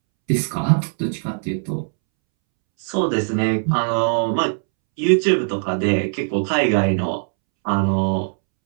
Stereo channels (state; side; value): silent; left; 66 dB below the other